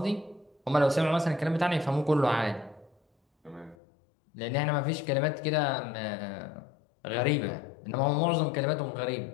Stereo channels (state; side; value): drops out; right; at 3.8 s